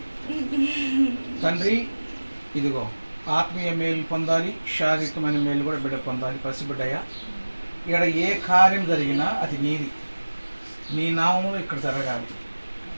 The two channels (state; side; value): inverted; both; correlation -1.00